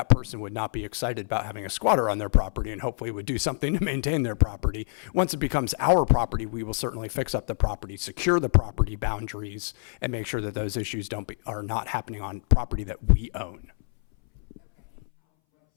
person would not be excited about having a squatter on their property, and hopefully would do something to maintain their property. Once it becomes our property, we will certainly fix up the property, secure the property boundaries, and make sure that those issues are not happening on property that we own. Okay, and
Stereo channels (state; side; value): silent; right; 60 dB below the other